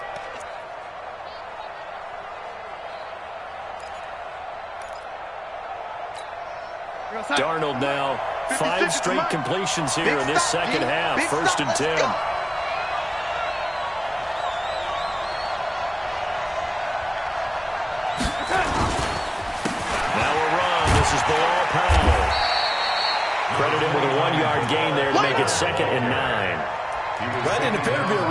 Darnold now, 5 straight completions here in this second half. First and 10. Credit him with a 1-yard gain there to make it 2nd and 9. That didn't appear to be a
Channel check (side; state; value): both; identical; correlation 1.00